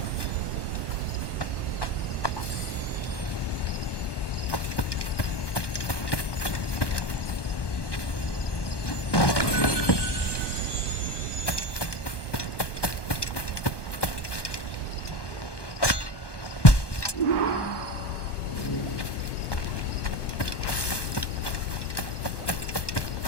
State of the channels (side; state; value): right; late; 1.2 ms